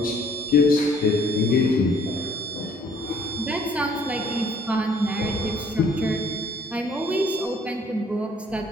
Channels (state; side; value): normal; both; correlation 0.59